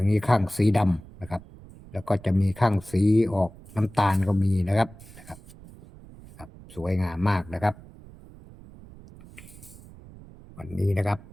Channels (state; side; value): noise; right; rumble, 20 dB below the sound